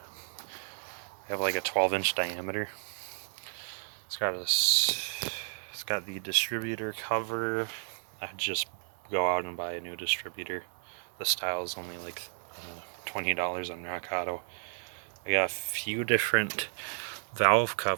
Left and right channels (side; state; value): left; silent; digital silence